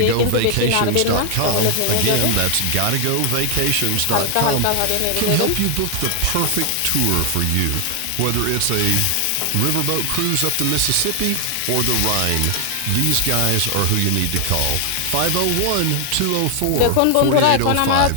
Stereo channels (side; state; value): both; different; correlation 0.00